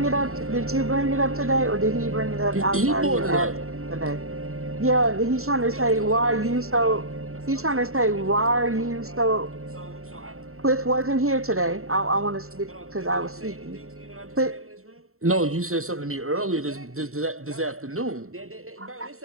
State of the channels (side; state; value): left; late; 0.63 ms